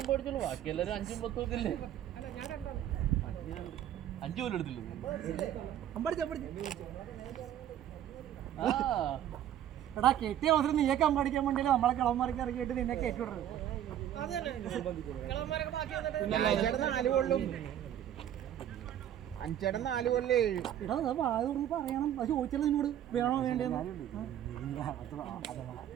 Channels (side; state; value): left; quieter; 11.0 dB